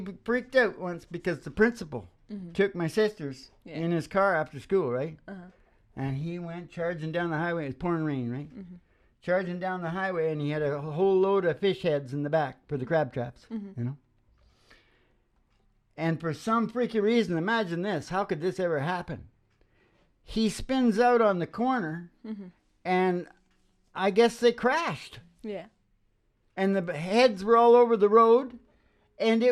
freaked out once because the principal took my sisters in his car after school, right? And he went charging down the highway. It was pouring rain, right? Charging down the highway, and he had a whole load of fish heads in the back for the crab traps, you know? And for some freaky reason, imagine this. How could this ever happen? He spins out on the corner, and I guess they crashed. Yeah. And the heads were all over the road, and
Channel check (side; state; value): both; identical; correlation 1.00